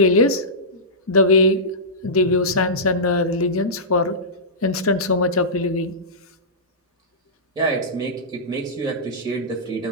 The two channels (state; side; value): normal; both; correlation -0.16